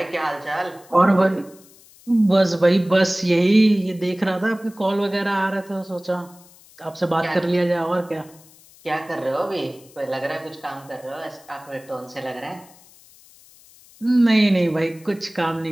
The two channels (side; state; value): left; noise; hiss, 25 dB below the sound